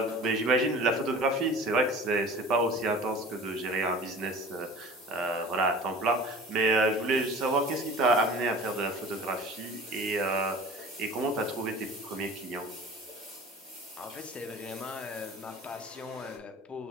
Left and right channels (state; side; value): normal; both; correlation 0.40